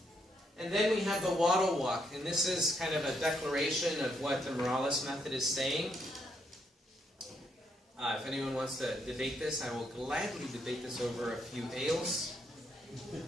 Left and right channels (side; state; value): both; normal; correlation 0.76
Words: And then we have the waddle walk, and this is kind of a declaration of what the Morales method is saying. If anyone wants to debate this, I will gladly debate this over a few ales.